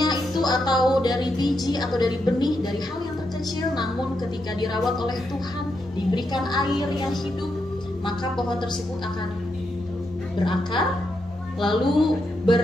itu atau dari biji atau dari benih, dari hal yang terkecil, namun ketika dirawat oleh Tuhan, diberikan air yang hidup, maka pohon tersebut akan berakar, lalu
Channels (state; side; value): normal; both; correlation 0.83